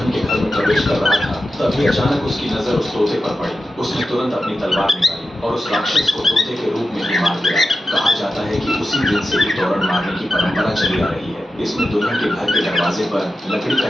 के घर में प्रवेश कर रहा था तभी अचानक उसकी नजर उस तोते पर पड़ी। उसने तुरंत अपनी तलवार निकाली और उस राक्षस को तोते के रूप में ही मार दिया। कहा जाता है कि उसी दिन से ही तोरण मारने की परंपरा चली आ रही है। इसमें दुल्हन के घर के दरवाजे पर लकड़ी का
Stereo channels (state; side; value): normal; both; correlation 0.92